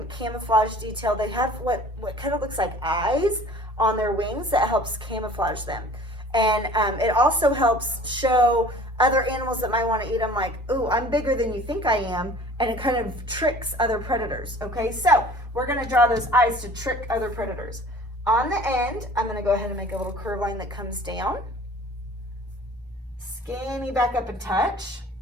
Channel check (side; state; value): both; normal; correlation 0.47